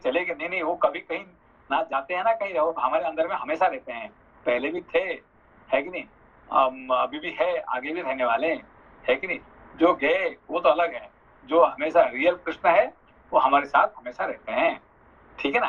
गए, नहीं, वो कभी कहीं ना जाते हैं ना कहीं, रहो हमारे अंदर में हमेशा रहते हैं, पहले भी थे, है कि नहीं? अभी भी है, आगे भी रहने वाले, है कि नहीं? जो गए वो तो अलग है, जो हमेशा रियल कृष्ण है वो हमारे साथ हमेशा रहते हैं, ठीक है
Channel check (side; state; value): both; identical; correlation 1.00